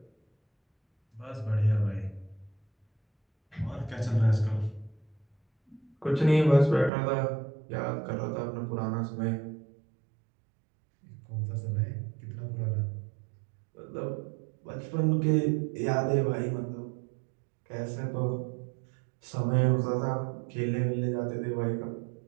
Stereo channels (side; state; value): left; drops out; at 6.9 s